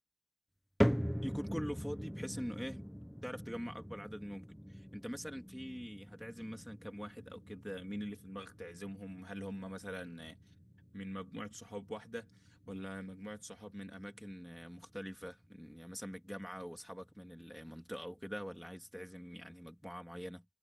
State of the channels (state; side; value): identical; both; correlation 1.00